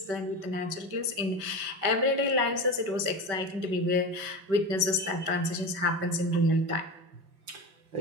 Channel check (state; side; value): late; left; 5.2 ms